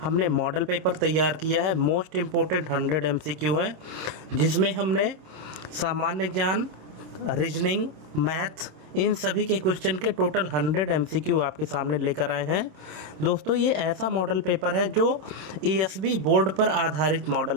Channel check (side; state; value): left; late; 26 ms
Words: हमने मॉडल पेपर तैयार किया है। मोस्ट इम्पोर्टेंट 100 MCQ है, जिसमें हमने सामान्य ज्ञान, रीजनिंग, मैथ, इन सभी के क्वेश्चन के टोटल 100 MCQ आपके सामने लेकर आए हैं। दोस्तों, ये ऐसा मॉडल पेपर है जो ESB बोर्ड पर आधारित मॉडल